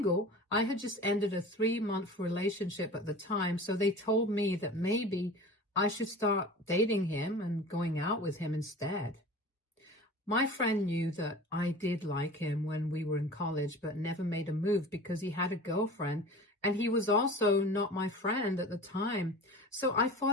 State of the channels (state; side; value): normal; both; correlation 0.38